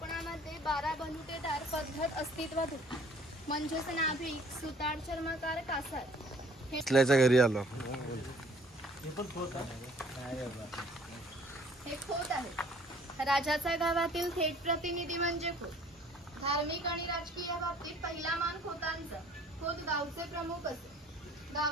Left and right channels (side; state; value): both; normal; correlation 0.56